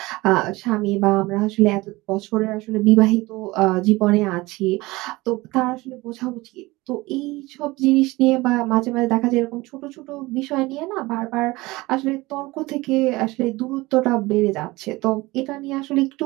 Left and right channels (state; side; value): quieter; left; 21.1 dB